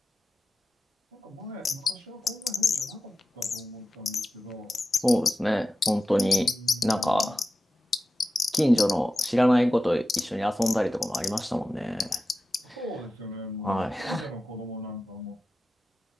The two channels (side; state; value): both; normal; correlation 0.92